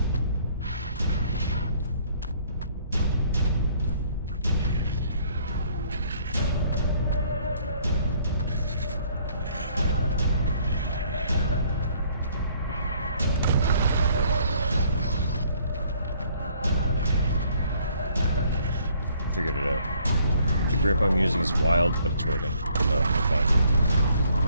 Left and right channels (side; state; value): both; inverted; correlation -0.62